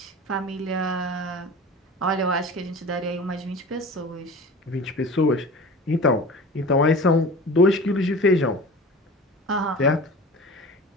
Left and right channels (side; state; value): both; normal; correlation 0.37